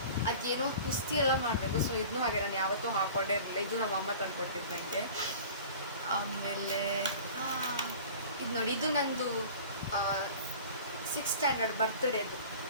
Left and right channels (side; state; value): both; inverted; correlation -0.41